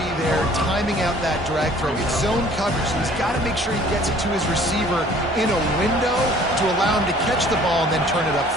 there, timing out that drag throw. It's zone coverage, so he's got to make sure he gets it to his receiver in a window to allow him to catch the ball and then turn it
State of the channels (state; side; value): normal; both; correlation 0.53